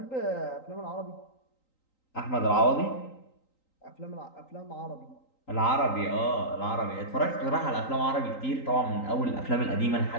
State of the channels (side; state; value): right; late; 3.9 ms